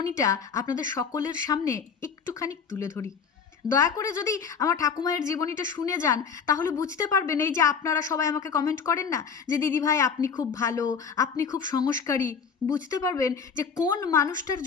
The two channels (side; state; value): right; quieter; 6.3 dB